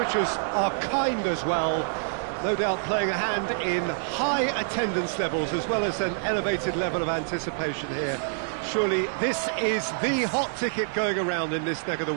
are kind as well. No doubt playing a hand in high attendance levels as well as an elevated level of anticipation here. Surely this is the hot ticket going around in this neck of the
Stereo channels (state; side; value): silent; left; 60 dB below the other